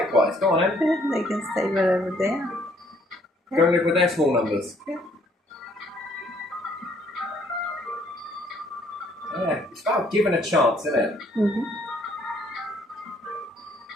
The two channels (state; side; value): normal; both; correlation 0.64